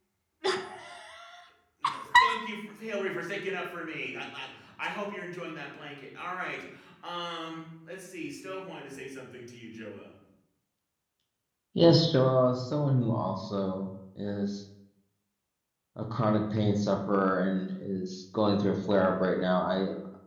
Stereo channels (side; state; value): both; identical; correlation 1.00